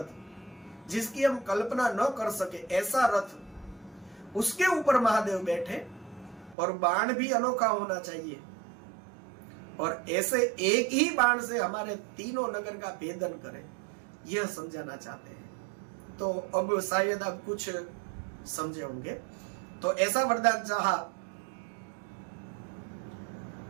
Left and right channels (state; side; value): drops out; left; at 6.6 s